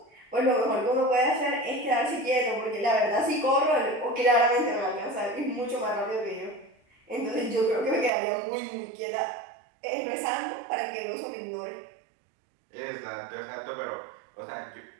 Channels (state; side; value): drops out; left; at 8.1 s